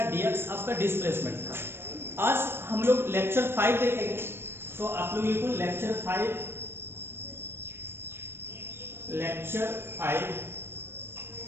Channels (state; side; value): late; left; 0.11 ms